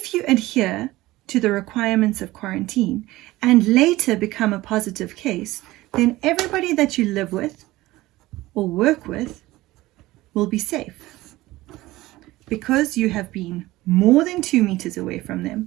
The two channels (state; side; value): quieter; left; 18.1 dB